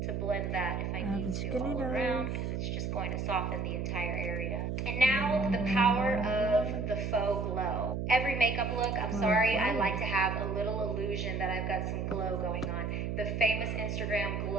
blend that if I need to all around, because it's just going to soften the entire area. And now the power of the faux glow. Every makeup look, I'm sorry, I like to have a little illusion that I've got some glow going on. The famous Instagram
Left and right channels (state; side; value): noise; right; hum, 2 dB below the sound